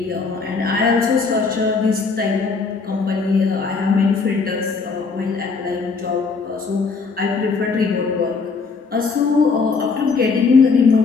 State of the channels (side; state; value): right; quieter; 4.7 dB